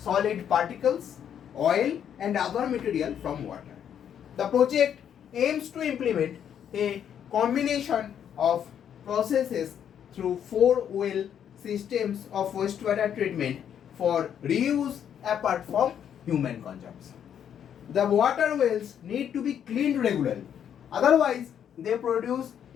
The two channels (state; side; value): quieter; right; 9.0 dB